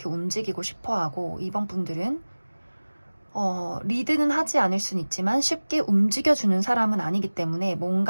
움직이고 싶어 하고 이번 분들은 리드는 하지 않을 수는 있지만 쉽게 움직여주는 사람은 아니기 때문에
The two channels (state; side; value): inverted; both; correlation -1.00